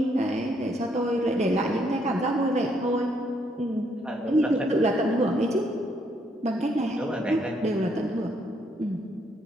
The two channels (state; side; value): normal; both; correlation 0.72